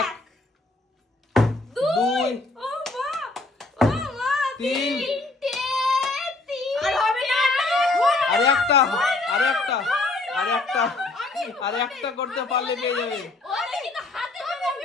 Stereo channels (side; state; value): right; quieter; 3.2 dB